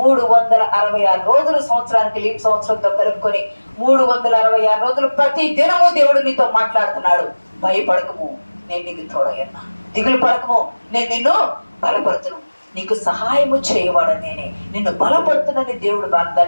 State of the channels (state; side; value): inverted; both; correlation -1.00